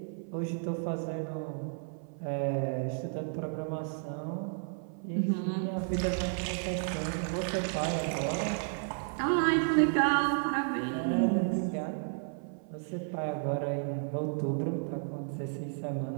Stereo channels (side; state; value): left; silent; 56 dB below the other